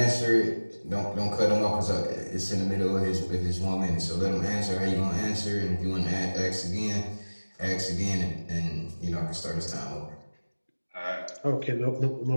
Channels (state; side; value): inverted; both; correlation -1.00